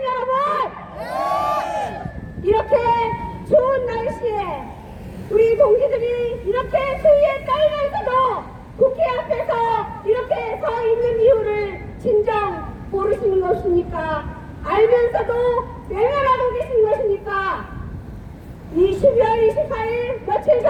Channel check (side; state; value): both; identical; correlation 1.00